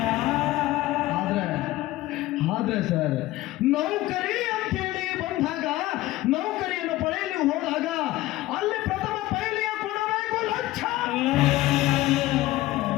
ಆದ್ರೆ ಸರ್, ನೌಕರಿ ಅಂತ ಹೇಳಿ ಬಂದಾಗ, ನೌಕರಿಯನ್ನು ಪಡೆಯಲು ಹೋದಾಗ ಅಲ್ಲಿ ಪ್ರಥಮ ಪೈಲಿಗೆ ಕೊಡಬೇಕು ಲಂಚ.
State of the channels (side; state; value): right; quieter; 17.1 dB